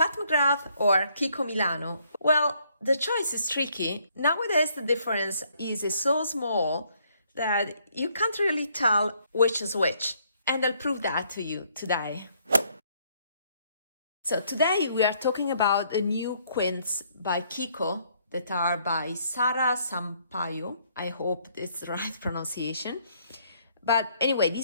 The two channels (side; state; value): both; inverted; correlation -0.68